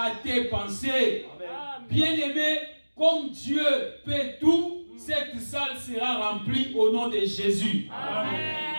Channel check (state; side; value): inverted; both; correlation -1.00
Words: tes pensées. Amen. Bien-aimé, comme Dieu peut tout, cette salle sera remplie au nom de Jésus.